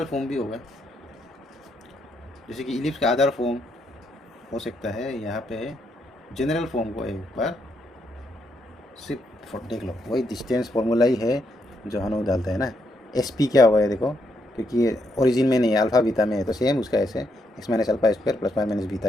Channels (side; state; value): both; normal; correlation 0.77